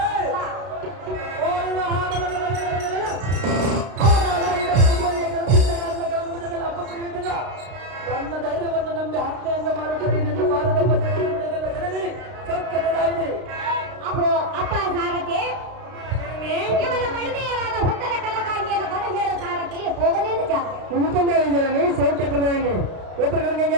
ನನ್ನ ಧೈರ್ಯವನ್ನು ನಂಬಿ ಹತ್ಯೆಯಿಂದ ಮಾಡುತ್ತಾರೆ ನಿನ್ನ ಬಾಲದೆಂಬ ಬಿಡುವುದಿಲ್ಲ ಜನನಿ ಸೌಖ್ಯದಾಗಿದೆ. ಅಹೋ ಅಪ್ಪ ಸಾರಥಿ, ಇವನ ಮಡದಿಯರಾದ ಹುತ್ತನ ಕನಕಾಂಗಿಯನ್ನು ಬರಹೇಳ ಸಾರಥಿ ಹೋಗಲೇನು ಜಾತ್ರೆ ಸೌಖ್ಯ ಪ್ರಧಾನಿ ಉತ್ತರ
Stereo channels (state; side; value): late; left; 32 ms